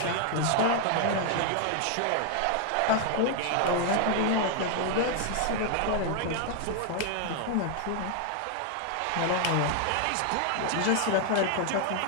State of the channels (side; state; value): both; different; correlation 0.00